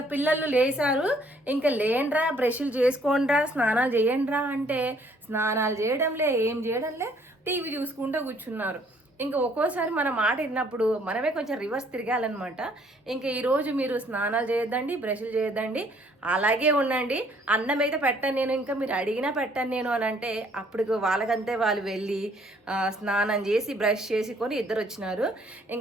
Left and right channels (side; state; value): both; normal; correlation 0.63